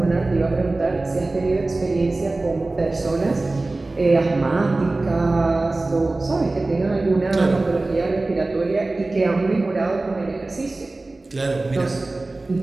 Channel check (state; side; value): quieter; left; 3.1 dB